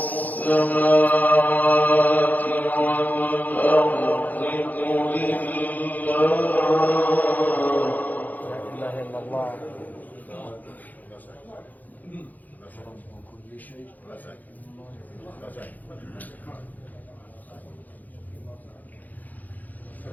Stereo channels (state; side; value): late; right; 0.082 ms